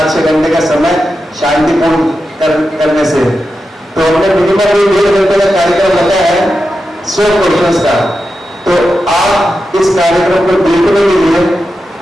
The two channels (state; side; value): normal; both; correlation 0.90